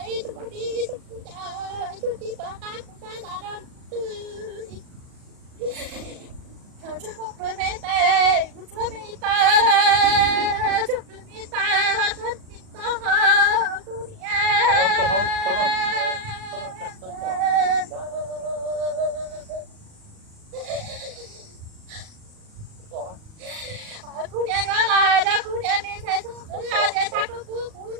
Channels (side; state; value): left; late; 38 ms